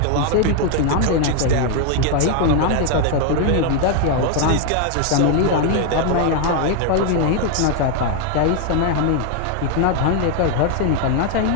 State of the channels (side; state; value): both; different; correlation 0.01